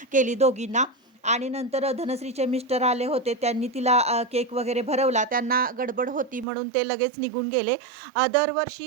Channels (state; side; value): drops out; left; at 6.5 s